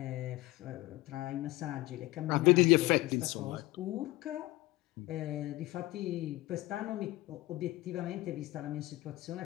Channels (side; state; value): right; quieter; 19.0 dB